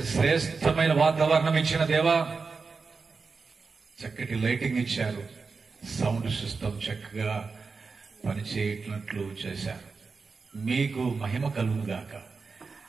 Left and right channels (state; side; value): quieter; left; 4.6 dB